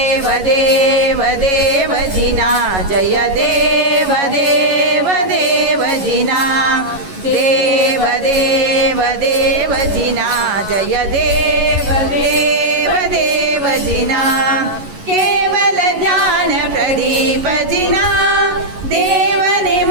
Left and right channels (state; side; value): late; left; 11 ms